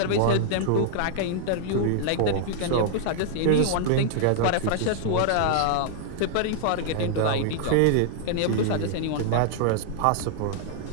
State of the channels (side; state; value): both; different; correlation 0.00